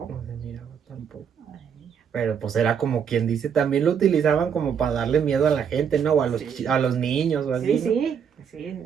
No se miraba tampoco. Ay, Pero pues era como quien dice, también lo utilizaban como para darle miedo a la gente, ¿no? O a los, Sí. a los niños o así, sí, ¿no? sí,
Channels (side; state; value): left; quieter; 7.5 dB